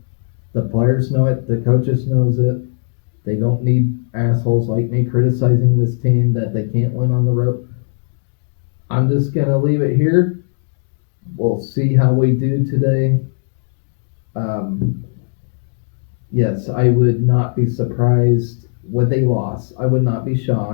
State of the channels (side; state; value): right; silent; 68 dB below the other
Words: The players know it. The coaches knows it. They don't need assholes like me criticizing this team that they can't win on the road. I'm just going to leave it here. We'll see how we do today. Yes, I would not be surprised with a loss. I would not be